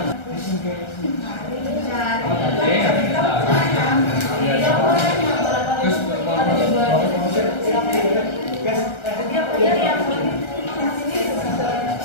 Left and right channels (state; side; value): late; right; 1.3 ms